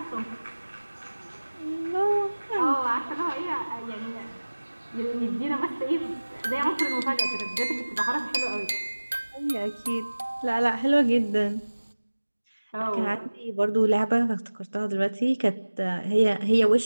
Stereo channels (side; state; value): both; inverted; correlation -1.00